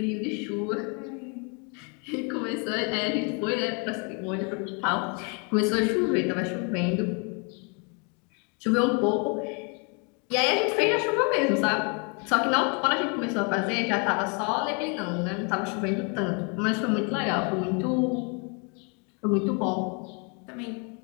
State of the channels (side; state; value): right; quieter; 35.2 dB